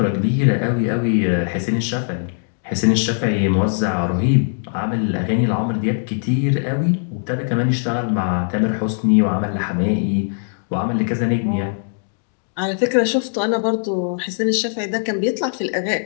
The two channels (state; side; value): silent; right; digital silence